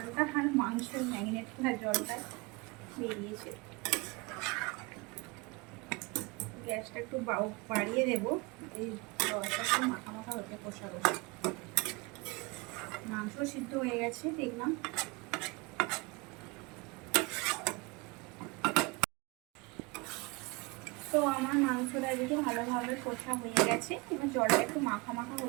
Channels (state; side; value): quieter; left; 26.2 dB